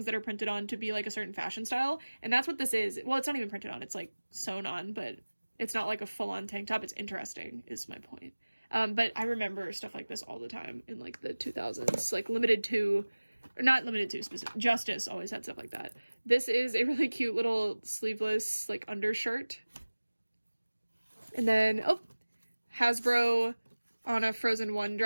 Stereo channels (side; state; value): both; inverted; correlation -1.00